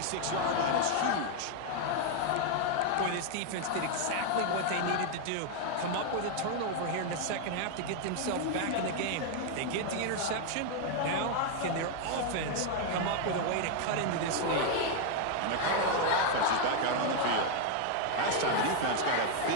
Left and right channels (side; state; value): both; different; correlation 0.01